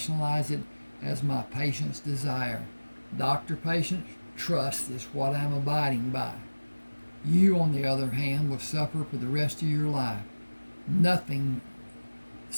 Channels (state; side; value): inverted; both; correlation -1.00